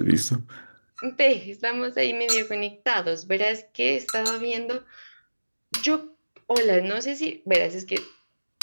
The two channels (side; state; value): both; inverted; correlation -1.00